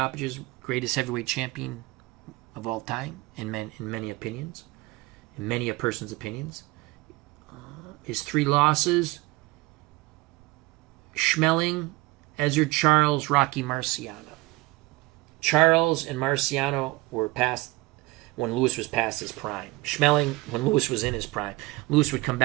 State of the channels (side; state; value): left; quieter; 21.1 dB